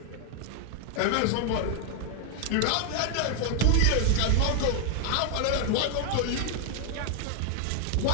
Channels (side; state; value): both; different; correlation 0.00